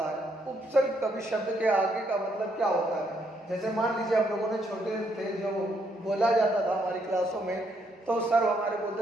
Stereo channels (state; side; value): normal; both; correlation 0.74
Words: है। उपसर्ग कभी शब्द के आगे का मतलब क्या होता है, जैसे मान लीजिए हम लोगों ने छोटे थे जो बोला जाता था हमारी क्लासों में, तो सर हमारे बोलते